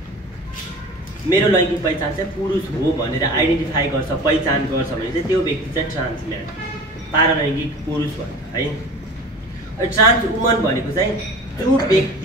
मेरो लैङ्गिक पहिचान चाहिँ पुरुष हो भनेर आइडेन्टिफाई गर्छ, पहिचान गर्छ भने चाहिँ त्यो व्यक्ति चाहिँ ट्रान्सम्यान, पारालैङ्गिक पुरुष भन्छ है। ट्रान्स वुमन भनेको चाहिँ जो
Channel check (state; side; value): normal; both; correlation 0.39